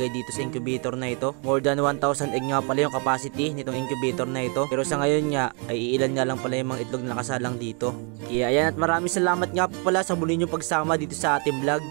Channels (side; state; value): left; quieter; 35.9 dB